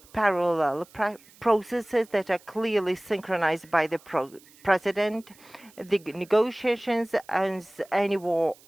parallel processes that are clearly synchronized by the President. The negotiations, as any war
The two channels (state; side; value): noise; right; hiss, 26 dB below the sound